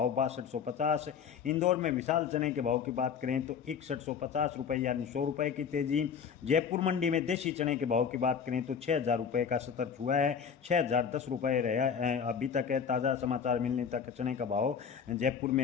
6250। इंदौर में विशाल चने के भाव की बात करें तो 6150 रुपए यानी 100 रुपए की तेजी। जयपुर मंडी में देसी चने के भाव की बात करें तो 6,000 रुपये का सतर छुआ है। 6,010 रुपये रहा अभी तक है। ताज़ा समाचार मिलने तक चने का भाव जयपुर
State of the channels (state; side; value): quieter; right; 7.1 dB